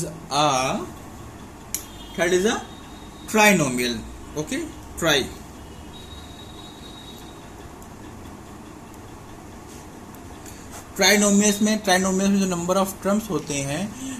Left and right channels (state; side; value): identical; both; correlation 1.00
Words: trinomial. Okay, trinomials में जो number of terms होते हैं,